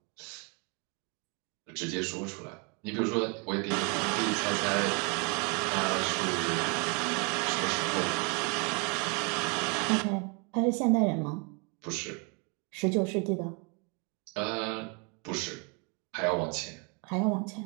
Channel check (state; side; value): quieter; left; 33.3 dB